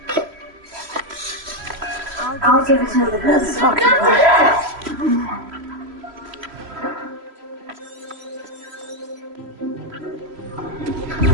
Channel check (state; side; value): late; left; 3.1 ms